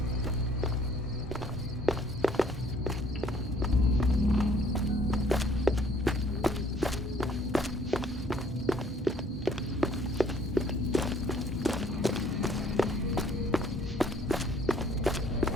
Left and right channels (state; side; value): normal; both; correlation 0.60